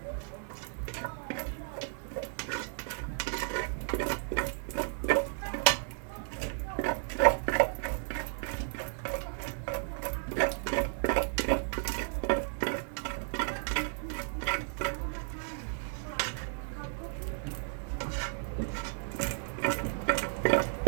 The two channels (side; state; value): left; silent; 55 dB below the other